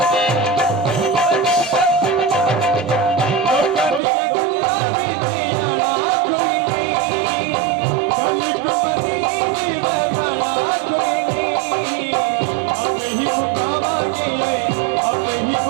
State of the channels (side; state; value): left; drops out; at 4.0 s